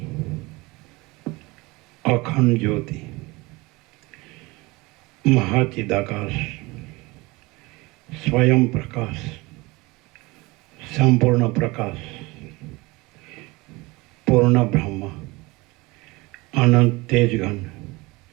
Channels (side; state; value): left; quieter; 23.2 dB